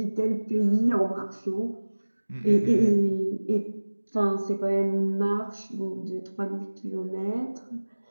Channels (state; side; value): inverted; both; correlation -1.00